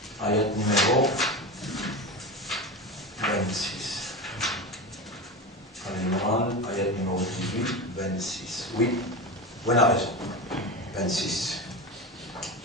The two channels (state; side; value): normal; both; correlation 0.24